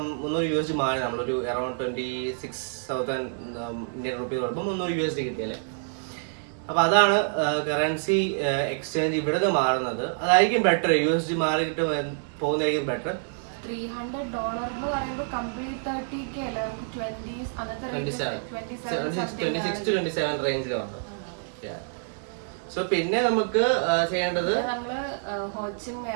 300 USD മാറി നമ്മളൊരു അറൌണ്ട് 26,000 ഇന്ത്യൻ റുപ്പീസ് കൊടുക്കുമ്പോൾ 300 USD കിട്ടിയല്ലേ. അപ്പൊ അതാണ് കറൻസി എക്സ്ചേഞ്ച് ഇവിടെ മാറുന്നത്. അതായിരിക്കും ബെറ്റർ. USD മാറിയിട്ട് പോകുന്നതായിരിക്കും ബെറ്റർ. $300 എന്ന് പറയുമ്പോൾ കംപ്ലീറ്റ് 30K അല്ല, 26 to 27 റേഞ്ചിലാണ്. സോ പിന്നെ നമുക്ക് ചെയ്യേണ്ടത്, നമ്മള് ഹോച്ചിം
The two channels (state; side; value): silent; left; 60 dB below the other